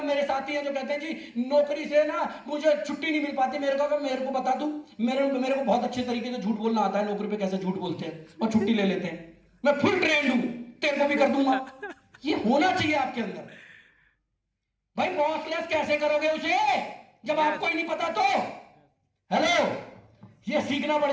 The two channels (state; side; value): identical; both; correlation 1.00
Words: मेरे साथी हैं जो कहते हैं जी नौकरी से ना मुझे छुट्टी नहीं मिल पाती, मेरे को बता दूं, मेरे को बहुत अच्छे तरीके से झूठ बोलना आता है, नौकरी पे कैसे झूठ बोलते हैं और छुट्टी ले लेते हैं, मैं फुल ट्रेंड हूं, तेरे को भी कर दूंगा। ये होना चाहिए आपके अंदर। भाई बॉसलेस कैसे करोगे उसे जब आपको ही नहीं पता? तो हेलो, ये सीखना